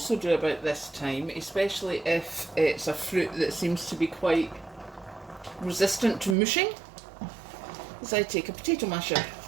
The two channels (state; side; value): drops out; left; at 6.4 s